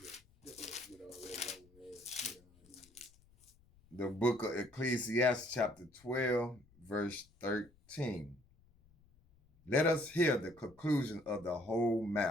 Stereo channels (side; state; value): left; noise; rumble, 29 dB below the sound